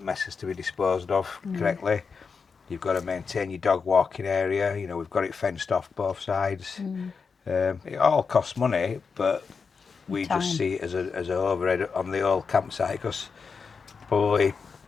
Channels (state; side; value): quieter; right; 5.3 dB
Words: mess has to be disposed of correctly. You've got to maintain your dog walking area. You know, we've got it fenced off both sides. It all costs money, but we just see it as a overhead on the old campsite because probably